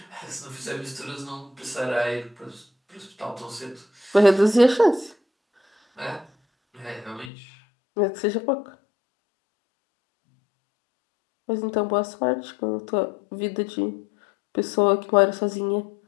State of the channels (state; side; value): drops out; right; at 7.3 s